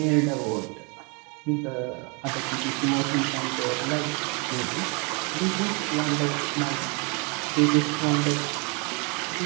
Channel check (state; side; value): quieter; left; 32.4 dB